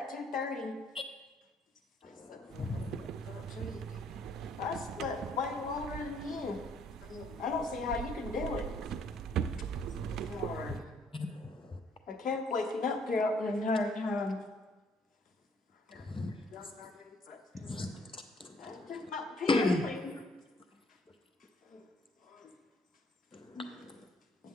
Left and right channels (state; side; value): normal; both; correlation 0.64